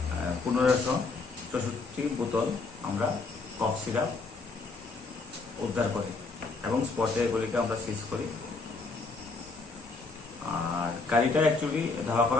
1564 বোতল আমরা কফ সিরাপ উদ্ধার করি এবং স্পটে এগুলিকে আমরা সিজ করি। আর গাড়িটা অ্যাকচুয়ালি ধাওয়া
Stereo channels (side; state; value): right; quieter; 3.9 dB